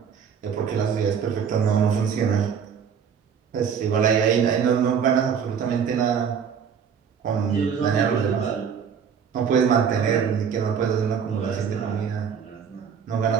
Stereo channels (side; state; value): left; quieter; 7.2 dB